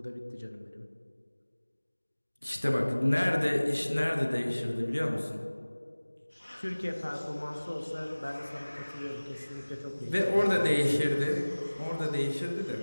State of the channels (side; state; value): both; inverted; correlation -1.00